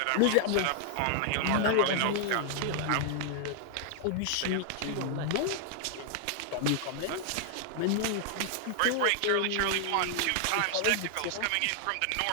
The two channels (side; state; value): both; different; correlation 0.00